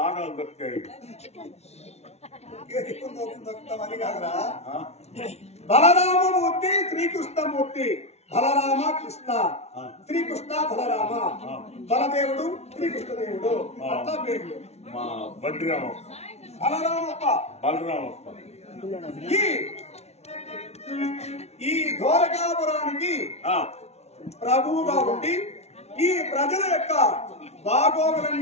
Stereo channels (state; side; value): late; right; 0.31 ms